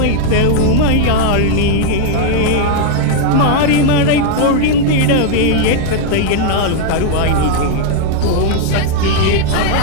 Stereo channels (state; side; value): different; both; correlation 0.00